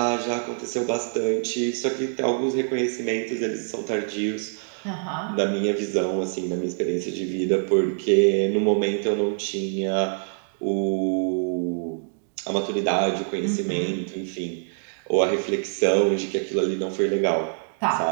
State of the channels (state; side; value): silent; left; digital silence